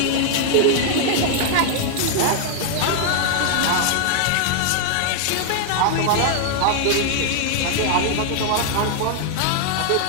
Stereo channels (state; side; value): different; both; correlation 0.00